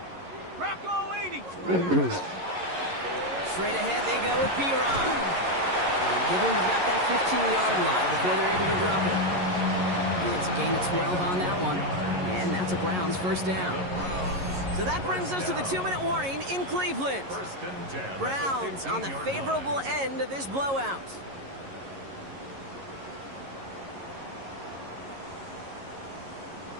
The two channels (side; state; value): left; late; 11 ms